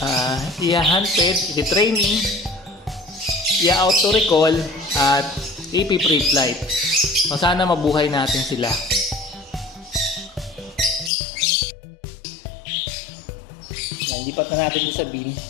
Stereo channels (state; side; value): drops out; right; at 11.1 s